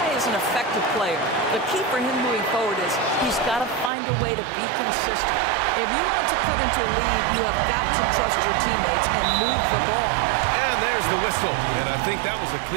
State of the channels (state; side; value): drops out; left; at 3.9 s